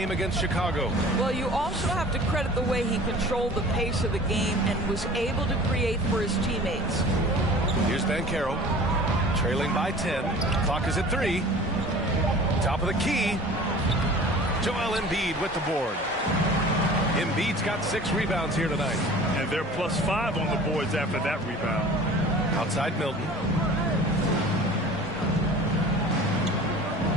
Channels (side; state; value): both; normal; correlation 0.43